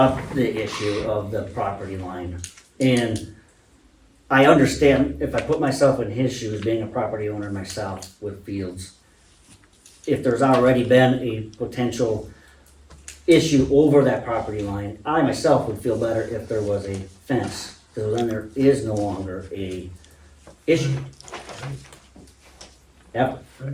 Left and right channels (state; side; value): identical; both; correlation 1.00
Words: the issue of the property line, and I understand if I put myself in his shoes, being a property owner myself with fields, if there's already been a potential issue over that property line, I myself would feel better if there was a fence, because then there is no longer a issue. Ever,